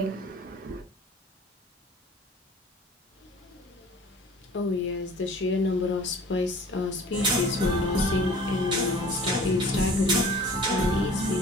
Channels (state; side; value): normal; both; correlation 0.46